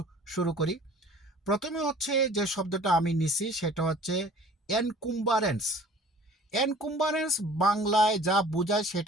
শুরু করি। প্রথমে হচ্ছে যে শব্দটা আমি নিছি সেটা হচ্ছে এনকুম্বারেন্স। এনকুম্বারেন্স বাংলায় যা বোঝায়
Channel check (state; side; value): normal; both; correlation 0.48